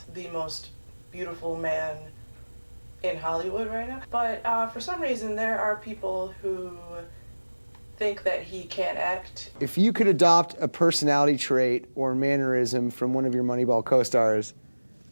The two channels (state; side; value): inverted; both; correlation -1.00